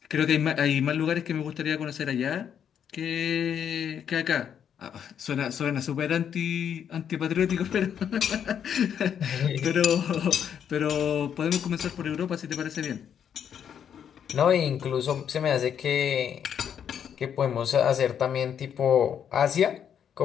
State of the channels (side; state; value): right; quieter; 8.5 dB